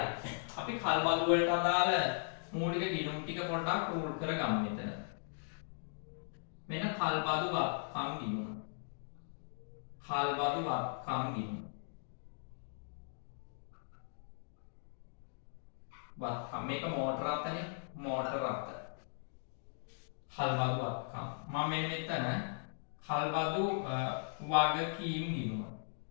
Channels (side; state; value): right; silent; digital silence